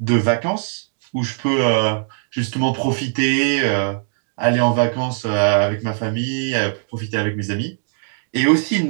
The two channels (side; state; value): left; silent; 61 dB below the other